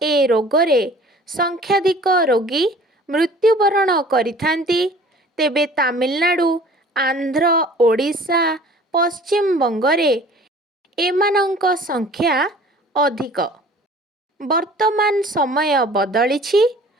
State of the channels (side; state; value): both; normal; correlation 0.48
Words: ए रोगरे संख्याधिक रोगी मृत्युवरण करिथांती। तेबे तामिलनाडु, आंध्र, ओडिशा, पश्चिम बंगरे एमानंक संख्या अधिक। वर्तमान समय बदलिछि।